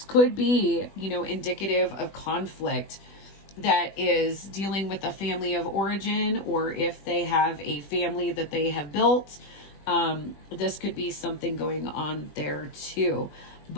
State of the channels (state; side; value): late; right; 20 ms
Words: could be, you know, indicative of conflict that is dealing with a family of origin, or if they have a family that they have built, this could be something going on there too.